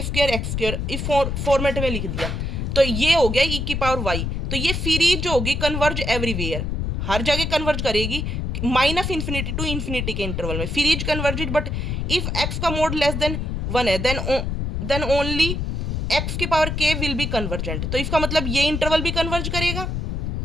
स्क्वायर एक्स स्क्वायर इस फॉर्मेट में लिख दिया, तो ये हो गया e की पावर y। तो ये सीरीज जो होगी कन्वर्ज एवरीवेयर, हर जगह कन्वर्ज करेगी -∞ to इन्फिनिटी के इंटरवल में, series converged, but if x का मोड लेस देन 1 है देन ओनली x की power k will be convergent. तो इसका मतलब ये इंटरवल भी कन्वर्ज करेगा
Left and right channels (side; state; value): left; noise; rumble, 2 dB below the sound